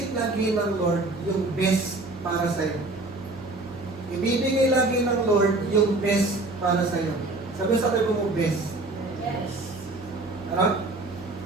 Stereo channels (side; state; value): left; quieter; 3.0 dB